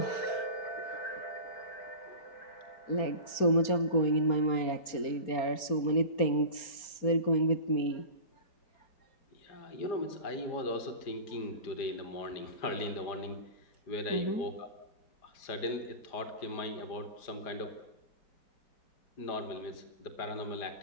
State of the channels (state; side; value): late; right; 4.3 ms